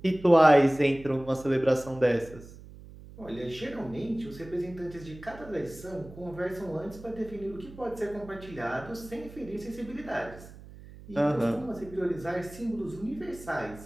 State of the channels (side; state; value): right; noise; hum, 17 dB below the sound